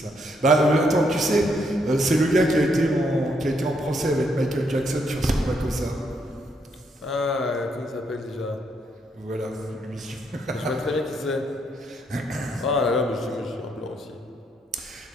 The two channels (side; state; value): both; normal; correlation 0.75